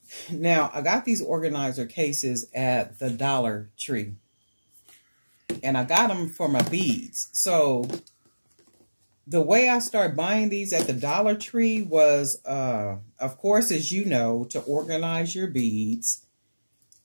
Now, I got these organizer cases at the Dollar Tree, and I got them for my beads. So the way I started buying these at the Dollar Tree was, of course, as you know, to organize your beads.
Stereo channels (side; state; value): both; inverted; correlation -1.00